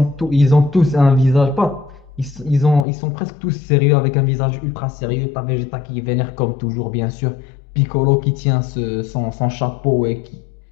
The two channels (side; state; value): right; drops out; at 2.9 s